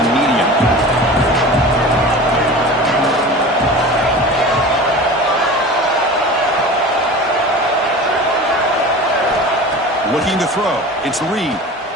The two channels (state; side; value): normal; both; correlation 0.35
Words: medium. Looking to throw. It's Reed.